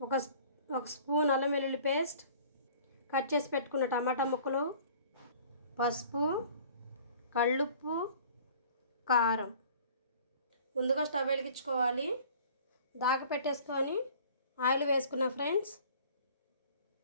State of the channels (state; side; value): inverted; both; correlation -0.49